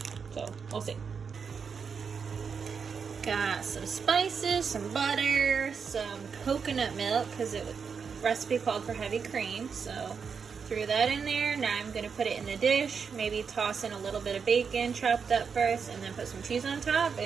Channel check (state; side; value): quieter; left; 6.0 dB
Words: So we'll see. Got some spices, some butter, some coconut milk, because it was recipe called for heavy cream, so threw that in there. Now I'm going to put it in the dish, maybe toss in a little bit of bacon chopped up first, and then put some cheese on top